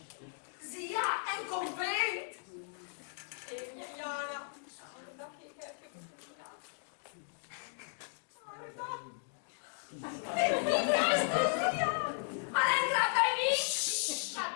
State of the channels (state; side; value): silent; right; digital silence